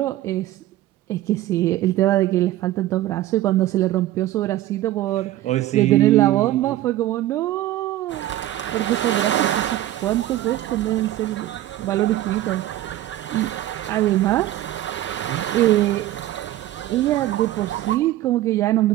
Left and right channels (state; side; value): quieter; left; 14.5 dB